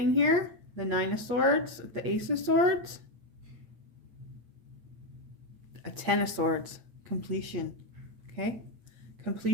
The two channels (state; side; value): late; left; 8.5 ms